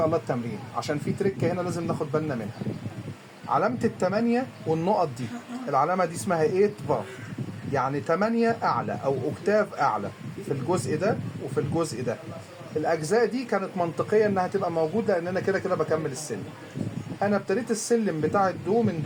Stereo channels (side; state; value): both; identical; correlation 1.00